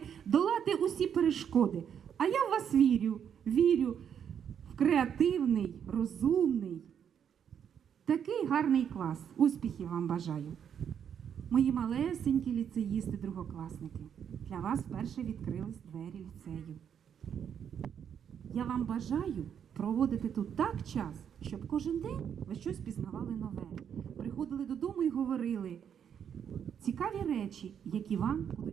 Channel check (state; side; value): quieter; left; 8.3 dB